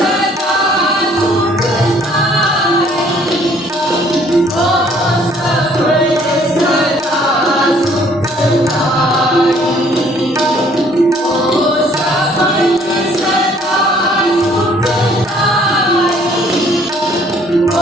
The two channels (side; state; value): both; normal; correlation 0.60